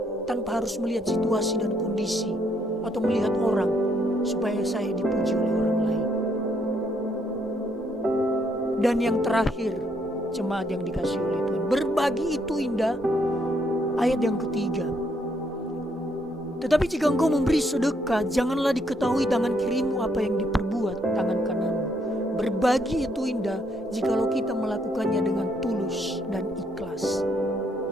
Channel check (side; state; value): both; normal; correlation 0.72